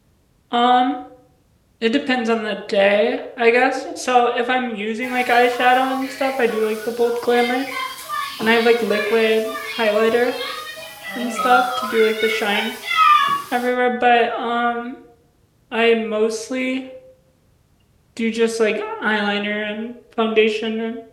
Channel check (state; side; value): identical; both; correlation 1.00